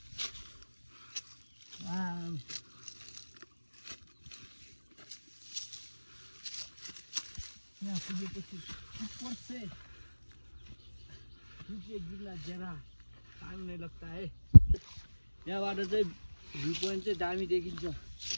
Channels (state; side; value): inverted; both; correlation -1.00